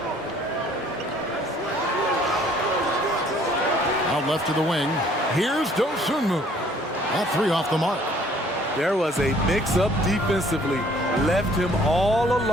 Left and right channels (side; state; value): both; normal; correlation 0.58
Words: Out left to the wing. Here's Dosunmu. That 3 off the mark. There was a mix-up defensively. Left him all